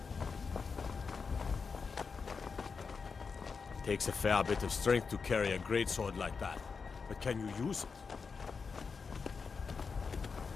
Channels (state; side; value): quieter; right; 5.2 dB